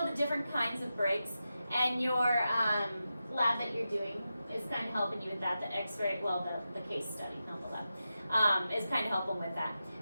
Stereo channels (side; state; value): both; inverted; correlation -0.91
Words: the different kinds of breaks, and your lab that you're doing is kind of helping you with that. The x-ray, well, the case study, not the lab, is kind of helping with that.